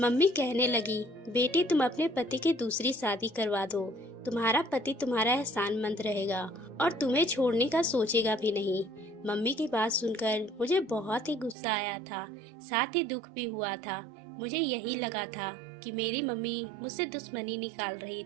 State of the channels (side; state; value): left; drops out; at 11.6 s